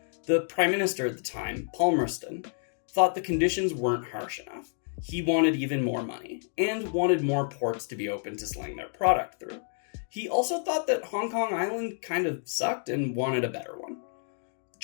The Prime Minister at the time, Palmerston, thought the conditions weren't harsh enough. He wanted even more money, and wanted more ports to be open to sling their product through. He also thought that Hong Kong Island kind of sucked and wanted a better one.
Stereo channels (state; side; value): silent; right; digital silence